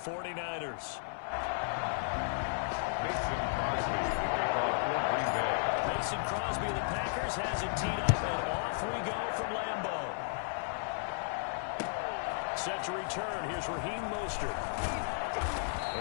Mason Crosby of the Packers has it teed up, and off we go from Lambeau. Set to return. Here's Raheem Mostert.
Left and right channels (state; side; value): silent; right; 55 dB below the other